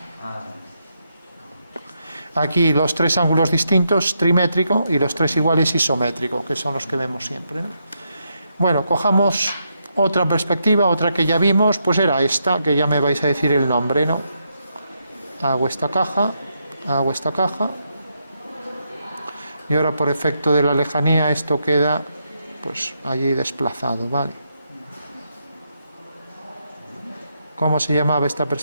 Aquí los tres ángulos distintos, trimétrico, y los tres iguales, isométrico, que son los que vemos siempre, ¿no? Bueno, cojamos otra perspectiva, otra que ya vimos, pues era esta, que ya me vais a decir el nombre, ¿no? Hago esta caja, y ahora por efecto de la lejanía esto queda pues allí desplazado, ¿vale? ¿Cómo se llamaba esta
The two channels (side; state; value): both; inverted; correlation -0.81